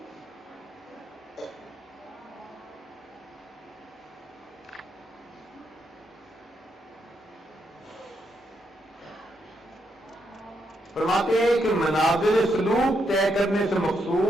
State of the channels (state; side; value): normal; both; correlation 0.79